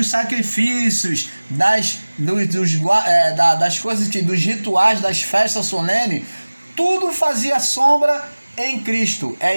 sacrifícios, das coisas, dos rituais, das festas solenes. Tudo fazia sombra em Cristo. É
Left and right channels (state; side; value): inverted; both; correlation -1.00